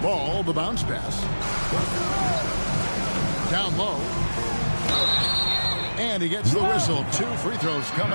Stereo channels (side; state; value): both; inverted; correlation -1.00